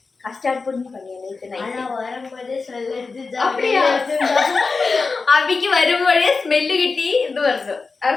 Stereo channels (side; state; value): right; quieter; 4.3 dB